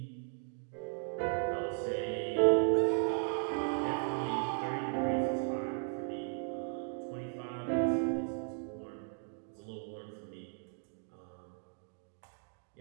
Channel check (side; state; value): left; silent; 54 dB below the other